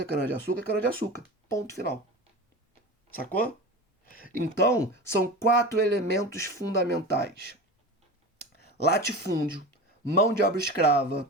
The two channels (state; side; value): normal; both; correlation 0.30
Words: cana-de-açúcar, cana-de-açúcar. Ponto final. Sacou? Então, são 4 elementos fundamentais. Latifúndio, mão de obra escrava,